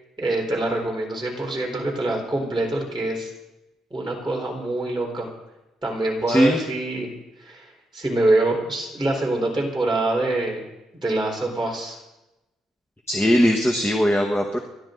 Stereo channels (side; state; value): both; normal; correlation 0.86